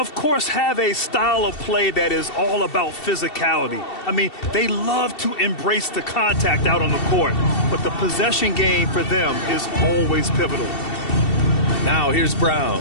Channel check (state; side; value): late; right; 2.7 ms